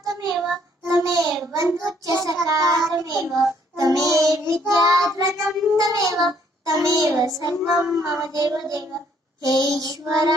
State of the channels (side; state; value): both; normal; correlation 0.65